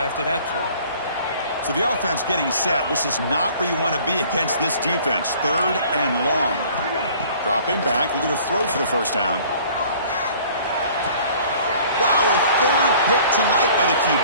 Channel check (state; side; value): inverted; both; correlation -0.52